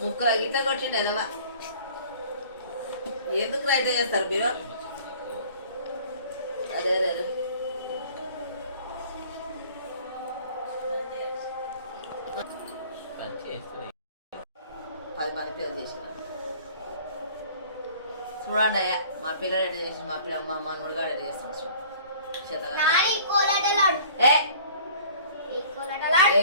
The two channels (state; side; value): inverted; both; correlation -0.49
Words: ముక్కల గీత కొట్టిండు ఎదవా. ఎందుకు రైట్ చేస్తారు మీరు? అదే అదే అదే 10 మంది పిల్లలు చేసిన చూడండి అయ్యా మా పిల్లలు ఎట్లా చేసి మా పిల్ల మా మనముడు గారు ఎట్లా చేస్తాను చూడు నాని కోలాటలాడు ఏ ఏ కోలాటలాడు